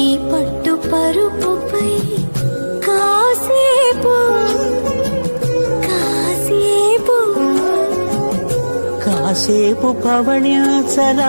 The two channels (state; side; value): inverted; both; correlation -1.00